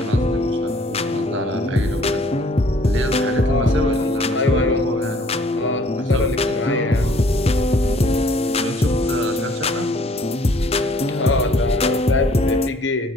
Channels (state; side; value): normal; both; correlation 0.58